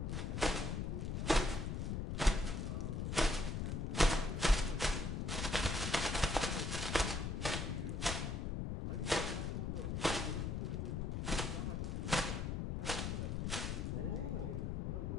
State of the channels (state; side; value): noise; left; rumble, 1 dB below the sound